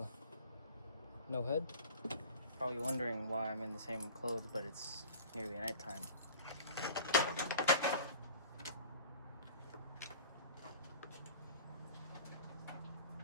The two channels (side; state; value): both; inverted; correlation -0.42